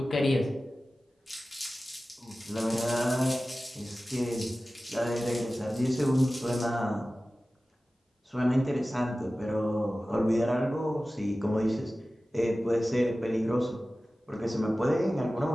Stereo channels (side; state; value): both; normal; correlation 0.96